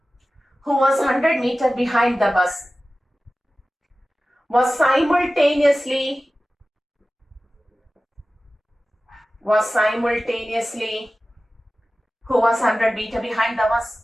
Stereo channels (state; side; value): normal; both; correlation 0.96